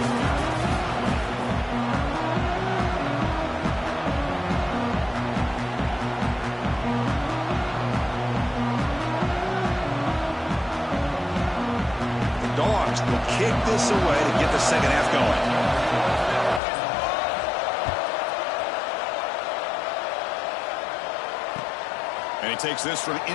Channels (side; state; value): right; drops out; at 16.6 s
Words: Dogs will kick this away to get the second half going. And he takes this from